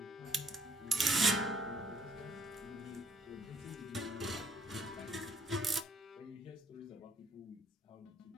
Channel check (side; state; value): both; normal; correlation 0.64